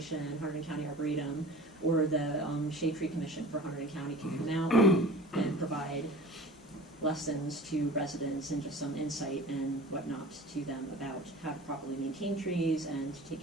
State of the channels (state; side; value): normal; both; correlation 0.40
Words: Hunterdon County Arboretum, or the Shade Tree Commission for Hunterdon County can come out and provide lessons to residents and just some insight and whatnot to them about how to properly maintain trees and to take